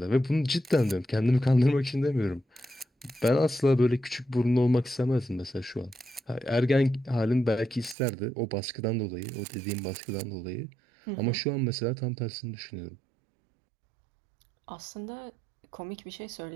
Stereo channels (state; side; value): drops out; left; at 8.0 s